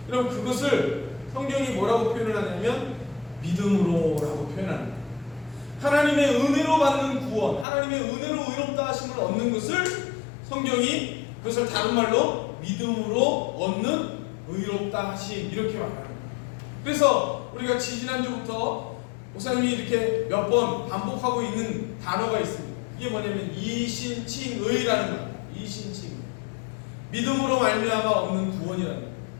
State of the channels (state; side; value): drops out; right; at 7.7 s